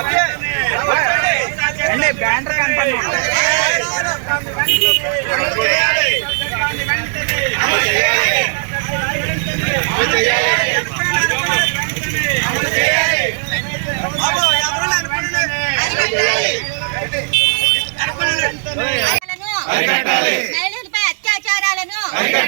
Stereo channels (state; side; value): silent; left; digital silence